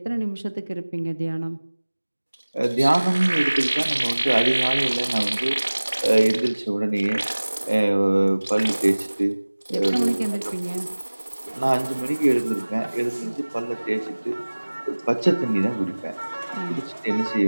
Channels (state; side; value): inverted; both; correlation -1.00